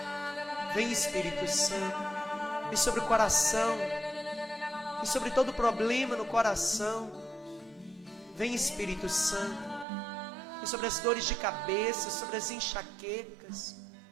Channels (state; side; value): drops out; left; at 9.9 s